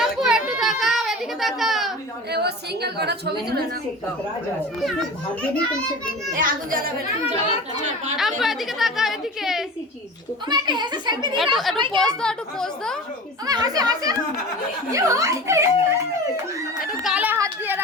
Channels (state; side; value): normal; both; correlation 0.35